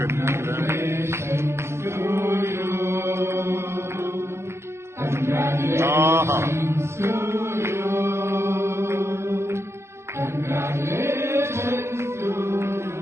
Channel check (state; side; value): late; left; 0.13 ms